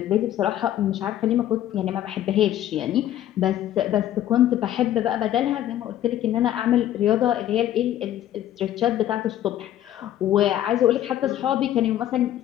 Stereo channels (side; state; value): right; quieter; 12.2 dB